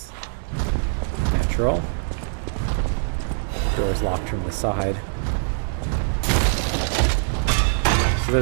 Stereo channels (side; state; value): left; silent; digital silence